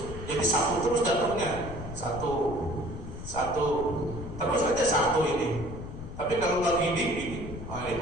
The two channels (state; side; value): noise; left; rumble, 10 dB below the sound